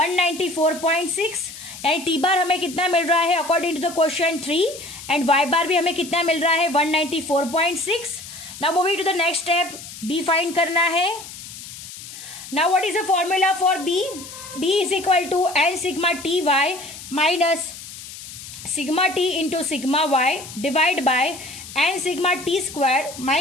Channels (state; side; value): noise; left; hiss, 13 dB below the sound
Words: यानी T bar हमें कितना मिल रहा है according to the question 3 and Y bar भी हमें कितना मिल रहा है 194.6. Now moving to the next step b find करना है. Now what is the formula for b. b is equal to n sigma ty minus sigma t into sigma y divide by n sigma t square